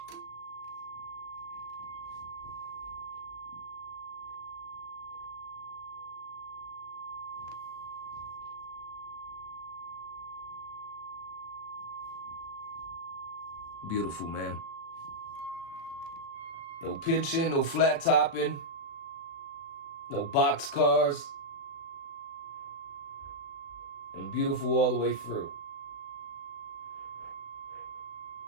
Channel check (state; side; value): late; right; 36 ms